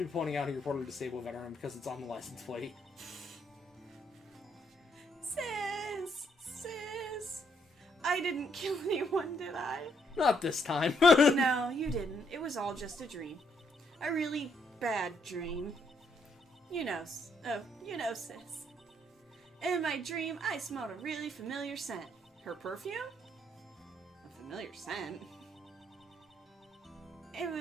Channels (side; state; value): both; normal; correlation 0.72